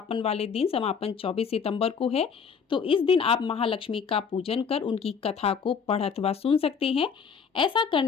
वाले दिन, समापन 24 सितंबर को है, तो इस दिन आप महालक्ष्मी का पूजन कर उनकी कथा को पढ़ अथवा सुन सकते हैं। ऐसा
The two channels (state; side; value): quieter; right; 6.3 dB